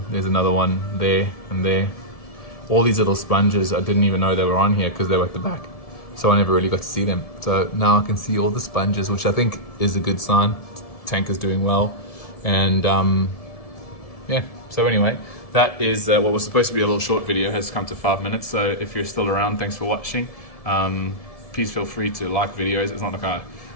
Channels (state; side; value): late; right; 1.7 ms